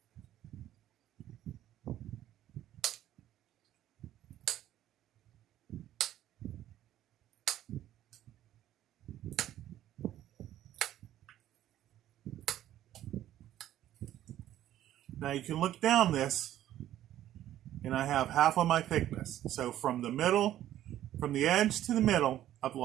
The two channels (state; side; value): quieter; left; 12.6 dB